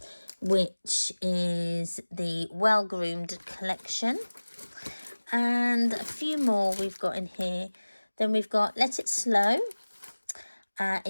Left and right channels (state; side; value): inverted; both; correlation -1.00